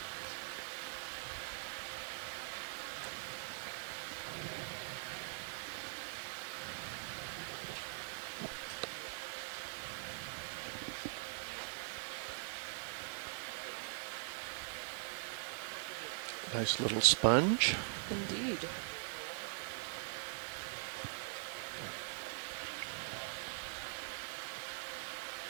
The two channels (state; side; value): silent; left; digital silence